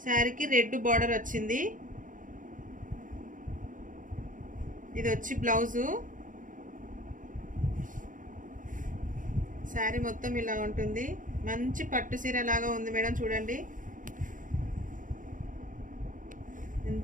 శారీకి రెడ్ బార్డర్ వచ్చింది. ఇది వచ్చి బ్లౌజు. శారీ మొత్తం ఇలా ఉంటుంది. మంచి పట్టు చీర లాగా ఉంది మేడం, చూడండి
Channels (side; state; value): left; late; 0.38 ms